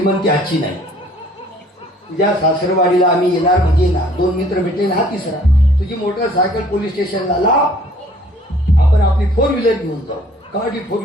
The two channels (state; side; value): normal; both; correlation 0.57